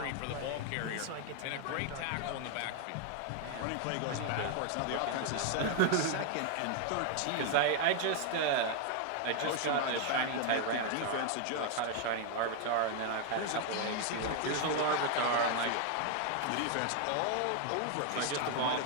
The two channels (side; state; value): both; different; correlation 0.00